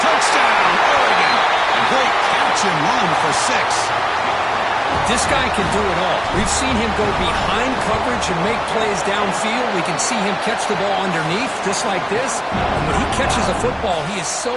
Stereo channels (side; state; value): both; identical; correlation 1.00